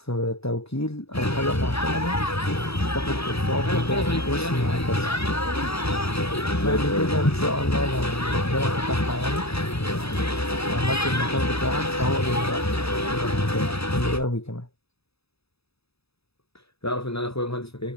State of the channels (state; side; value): late; right; 0.78 ms